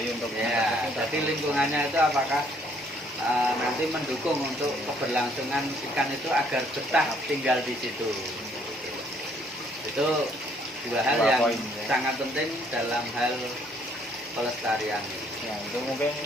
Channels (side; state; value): both; normal; correlation 0.65